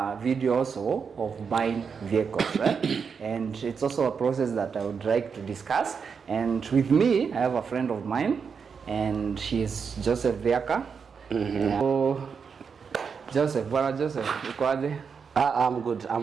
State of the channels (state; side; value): quieter; left; 6.0 dB